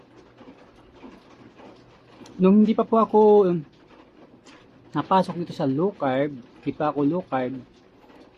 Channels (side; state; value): both; identical; correlation 1.00